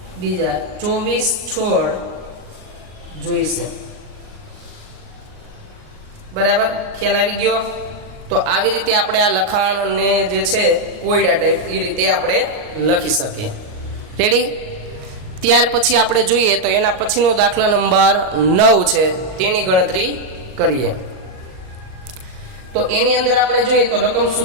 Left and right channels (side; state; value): left; late; 38 ms